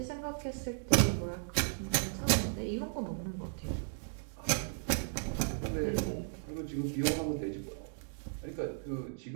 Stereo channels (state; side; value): silent; left; digital silence